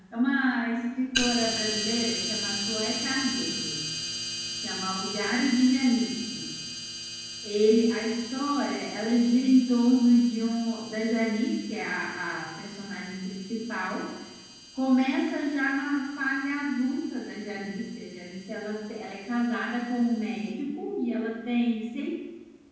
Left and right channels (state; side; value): identical; both; correlation 1.00